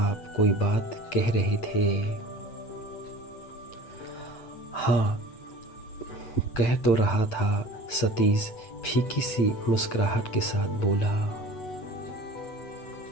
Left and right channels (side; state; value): right; late; 8.9 ms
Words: कोई बात कह रहे थे? हाँ, कह तो रहा था, सतीश फीकी सी मुस्कुराहट के साथ बोला।